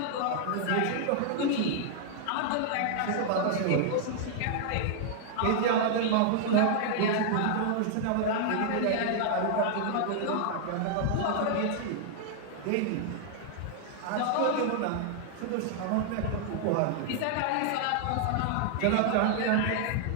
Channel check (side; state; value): both; different; correlation -0.01